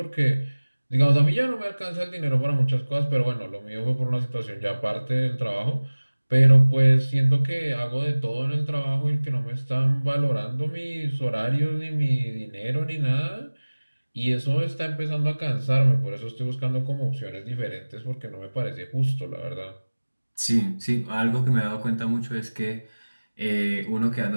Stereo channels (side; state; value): both; inverted; correlation -1.00